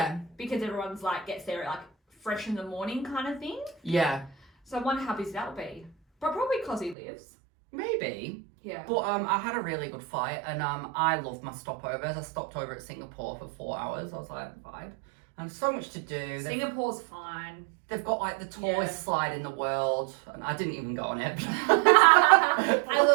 Because everyone's, like, gets there, like, fresh in the morning kind of thing. Yeah. So I wonder how busy that'll be. But probably cause he lives. Maybe. Yeah. But I had a really good flight, and I loved my stopovers. I stopped over at Singapore for 4 hours. I was like, vibe. And so much to do. Singapore's fine. They've got like the tallest slide in the world, and I didn't even go on it. I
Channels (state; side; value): drops out; left; at 7.0 s